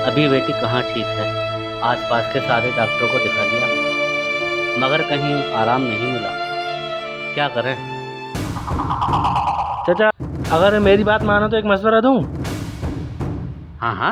अभी बेटी कहाँ ठीक है। आसपास के सारे डॉक्टरों को दिखा लिया, मगर कहीं आराम नहीं मिला। क्या करें? चाचा, अगर मेरी बात मानो तो एक मशवरा दूं। हाँ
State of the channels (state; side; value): identical; both; correlation 1.00